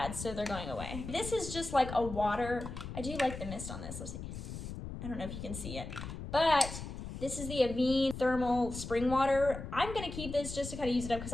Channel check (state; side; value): noise; left; rumble, 8 dB below the sound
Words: so they're going away. This is just like a water. I do like the mist on this. Let's see. I don't know if you can see it, but this is the Avene Thermal Spring Water. I'm gonna keep this just to kind of use it up because